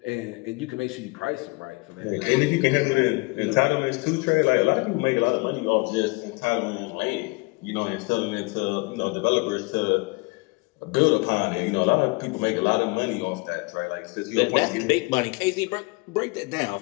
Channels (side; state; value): right; quieter; 27.3 dB